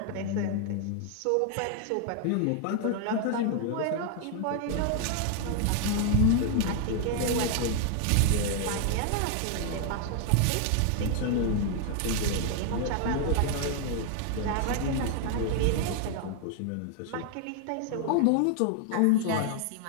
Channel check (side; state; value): both; different; correlation 0.00